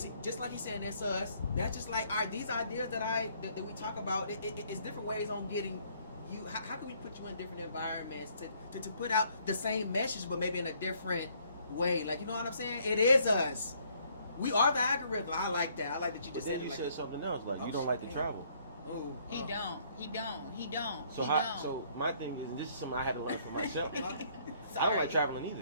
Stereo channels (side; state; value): both; inverted; correlation -0.65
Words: just like he said, that's us. That's just like, all right, these ideas that we talk about, it's different ways on getting you? How can we put you in different environments to put out the same message, but maybe in a different way? Like, you know what I'm saying? It is us. We are the algorithm. I like that. I like that you just said it. You Like, said something else. Like, Oh, you don't like to shit. travel. oh, He don't. So so my thing is, and this is something I had to learn for myself. I don't Sorry. like traveling either.